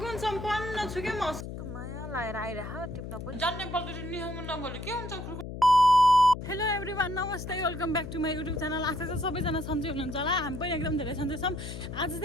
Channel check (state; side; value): noise; left; hum, 8 dB below the sound